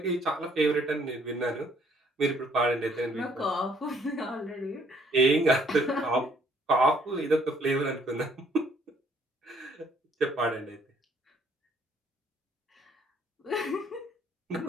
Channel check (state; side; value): normal; both; correlation 0.65